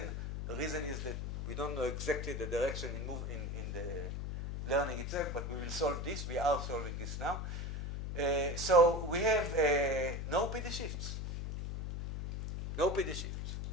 The reason is that we don't know exactly the direction in the learning itself, but we will solve this. We are solving this now. So we have no PD shifts. No PD shifts.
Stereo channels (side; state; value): left; noise; hum, 4 dB below the sound